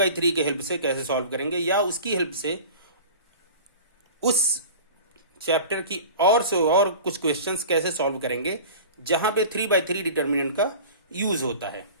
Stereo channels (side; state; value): both; inverted; correlation -0.38